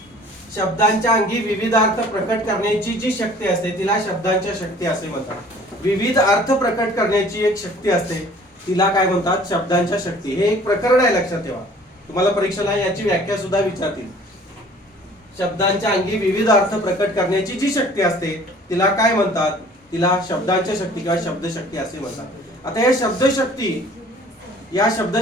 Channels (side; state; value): both; normal; correlation 0.51